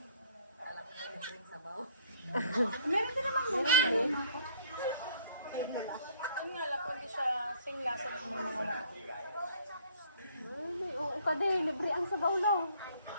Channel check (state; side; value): inverted; both; correlation -0.59